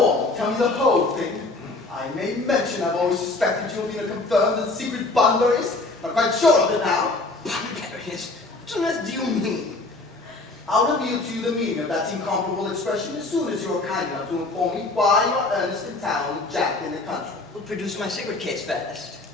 on, tell me the whole thing. I may mention I've always suspected you of being a confirmed and secret Bunburyist. I'm quite sure of it now. Bunburyist? What on earth do you mean? I'll reveal to you the meaning of that incomparable expression as soon as you're kind enough to inform me why you're Ernest in town and Jack in the country. We'll produce my cigarette case first.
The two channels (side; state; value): right; quieter; 3.2 dB